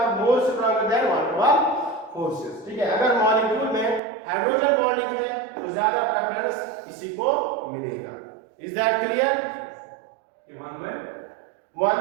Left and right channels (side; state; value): left; drops out; at 4.0 s